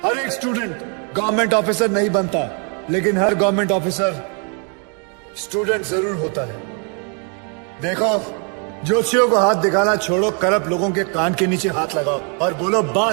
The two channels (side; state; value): left; quieter; 38.8 dB